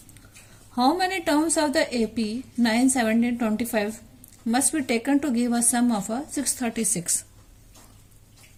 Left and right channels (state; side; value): identical; both; correlation 1.00